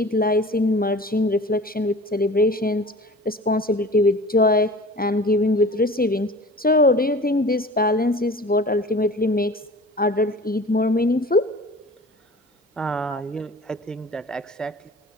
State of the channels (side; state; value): both; normal; correlation 0.41